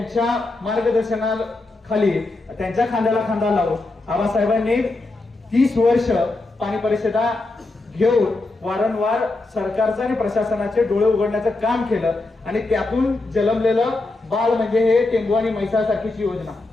मार्गदर्शनाखाली त्यांच्या खांद्याला खांदा लावून आबासाहेबांनी 30 वर्ष पाणी परिषदा घेऊन वारंवार सरकारचं आणि प्रशासनाचे डोळे उघडण्याचं काम केलं। आणि त्यातून जन्मलेलं बाळ म्हणजे हे टेंबू आणि म्हैसासारखीची योजना,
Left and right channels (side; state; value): right; quieter; 3.1 dB